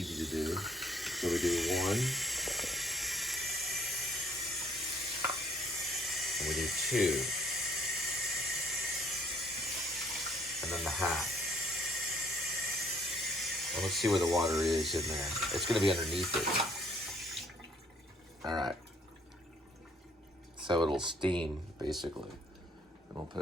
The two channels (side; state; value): both; normal; correlation 0.62